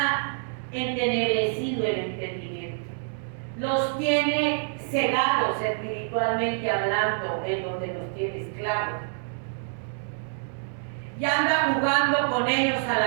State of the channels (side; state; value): left; silent; 60 dB below the other